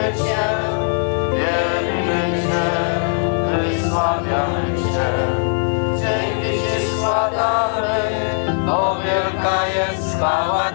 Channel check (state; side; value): silent; right; 65 dB below the other